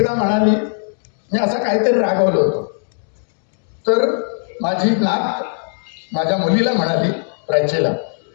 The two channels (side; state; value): right; silent; digital silence